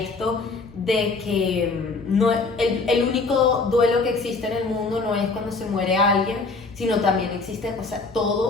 de que no, el único duelo que existe en el mundo no es cuando se muere alguien, sino también existe, o sea,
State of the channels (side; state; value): right; quieter; 3.8 dB